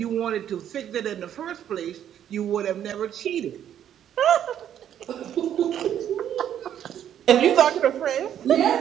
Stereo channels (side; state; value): left; quieter; 10.1 dB